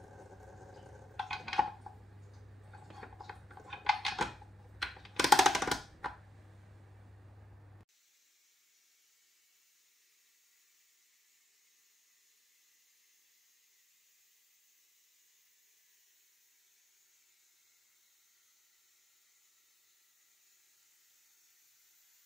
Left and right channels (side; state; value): both; normal; correlation 0.78